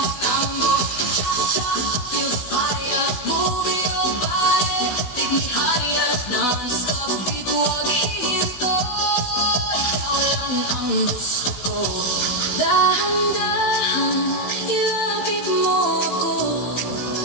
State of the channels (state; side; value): late; right; 16 ms